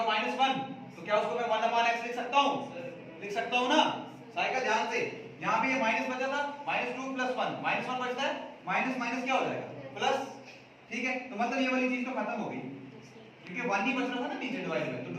-1. तो क्या उसको मैं 1 upon x लिख सकता हूँ? लिख सकता हूँ ना. साइकिल ध्यान से, यहाँ पे ये माइनस बचा था, -2 plus 1, -1 बचता है, माइनस माइनस क्या हो जाएगा? प्लस, ठीक है. तो मतलब ये वाली चीज तो खत्म हो गई, क्योंकि 1 ही बच रहा था ना नीचे डिवाइड में. तो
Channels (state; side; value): identical; both; correlation 1.00